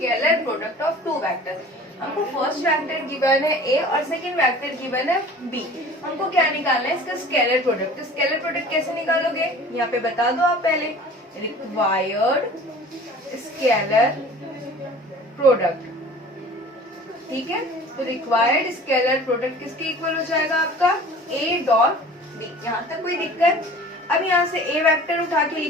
product of 2 vector. हमको फर्स्ट वेक्टर गिवन है a और सेकंड वेक्टर गिवन है b। हमको क्या निकालना है, इसका स्केलर प्रोडक्ट। तो स्केलर प्रोडक्ट कैसे निकालोगे, यहाँ पे बता दो आप पहले, रिक्वायर्ड स्केलर प्रोडक्ट। ठीक है, तो रिक्वायर्ड स्केलर प्रोडक्ट किसके इक्वल हो जाएगा, आपका a डॉट b। यहाँ तक कोई दिक्कत। अब यहाँ से a वेक्टर उठा के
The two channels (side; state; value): both; normal; correlation 0.44